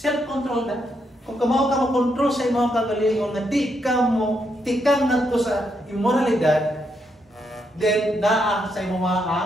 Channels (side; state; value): both; normal; correlation 0.79